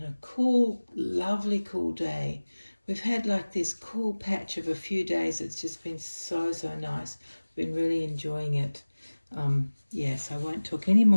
a cool, lovely cool day. We've had like this cool patch of a few days. It's just been so nice. Been really enjoying it. Yes, I won't talk any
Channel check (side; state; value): both; inverted; correlation -1.00